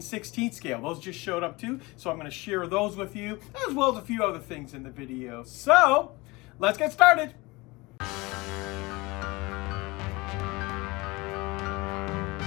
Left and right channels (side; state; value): right; quieter; 23.3 dB